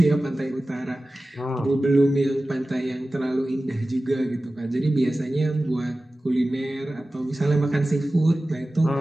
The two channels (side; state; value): both; normal; correlation 0.96